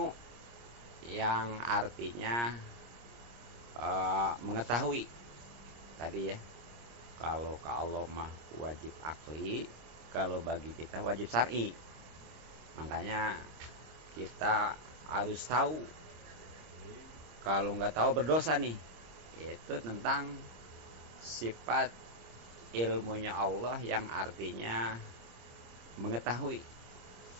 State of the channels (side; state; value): left; late; 26 ms